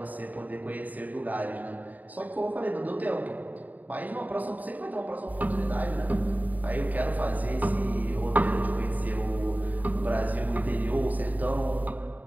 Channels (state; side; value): late; left; 0.078 ms